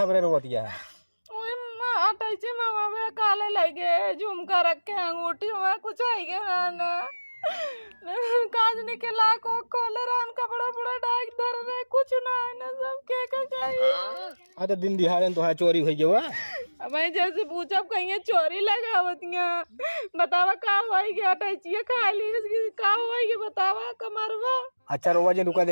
थबरे रोतिया है अटैची मामा में काले लगे झुमका रखे अंगूठी में कुछ आई गया ना काज निकला को खोले रान कपड़ा बड़ा डाक धर रहे कुछ ना है ना सब के चाहिए। अच्छा दिन दिहाड़े तो है चोरी हुई हुआ मैं जैसे पूछा कहीं चोरी लगावतियां बतावा का होई गया अटैची खा ली इसकी का होई गया बतावा कमरवा। अच्छा रोवा जी रुका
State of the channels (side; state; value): both; inverted; correlation -1.00